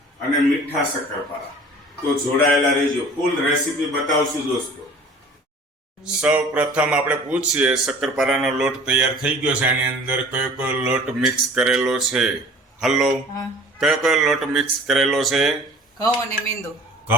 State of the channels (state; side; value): normal; both; correlation 0.46